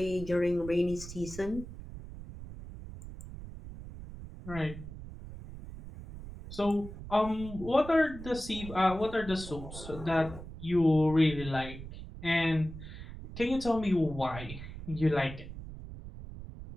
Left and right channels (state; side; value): noise; right; rumble, 12 dB below the sound